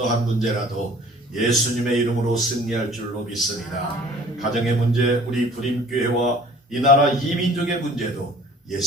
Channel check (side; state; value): both; normal; correlation 0.50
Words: 문제라도 예수님의 이름으로 승리할 줄로 믿습니다. 가정의 문제, 우리 불임교회와 이 나라 이민족의 문제도